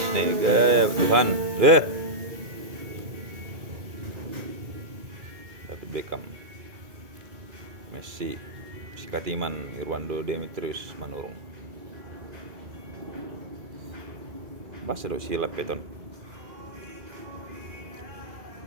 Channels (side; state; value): left; late; 2.2 ms